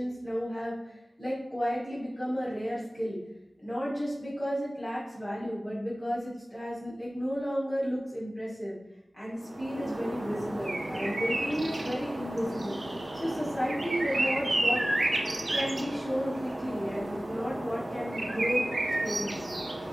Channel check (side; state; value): both; normal; correlation 0.97